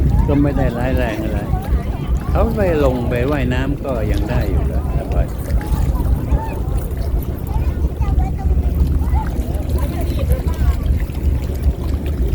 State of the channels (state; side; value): identical; both; correlation 1.00